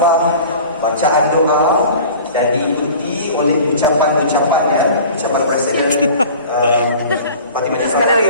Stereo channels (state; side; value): inverted; both; correlation -0.42